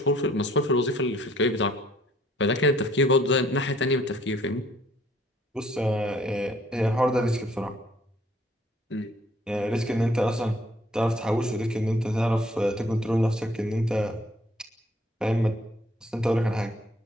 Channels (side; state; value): both; normal; correlation 0.61